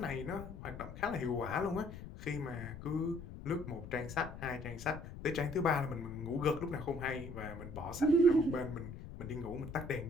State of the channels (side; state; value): left; noise; rumble, 11 dB below the sound